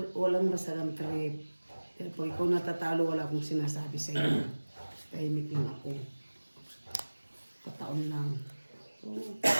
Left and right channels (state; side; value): inverted; both; correlation -1.00